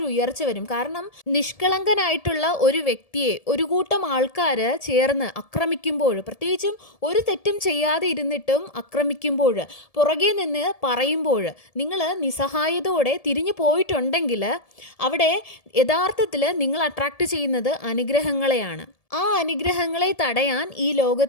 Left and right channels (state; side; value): late; right; 1.7 ms